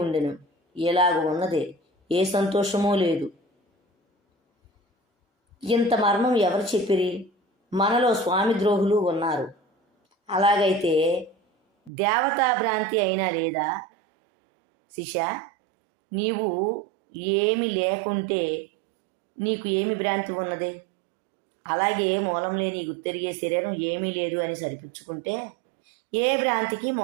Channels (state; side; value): drops out; left; at 11.9 s